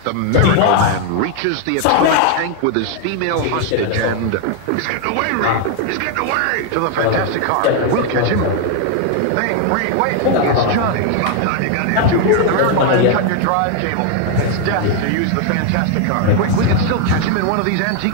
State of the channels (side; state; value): both; different; correlation 0.00